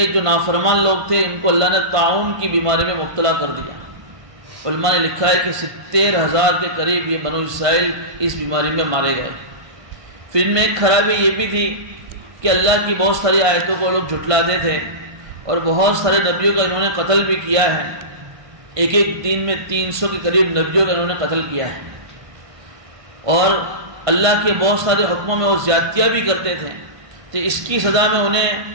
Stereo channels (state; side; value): late; left; 1.5 ms